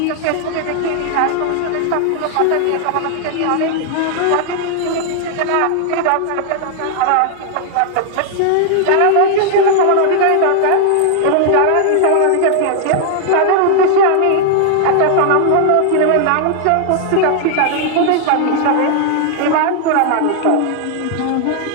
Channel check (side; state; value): both; different; correlation 0.00